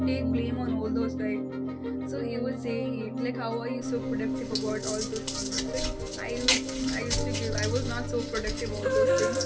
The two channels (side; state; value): both; identical; correlation 1.00